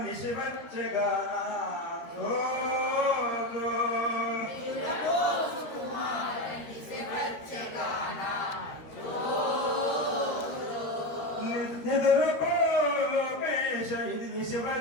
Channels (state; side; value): late; right; 13 ms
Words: నిశివచ్చగానా నిదురపో లోకేశ ఇది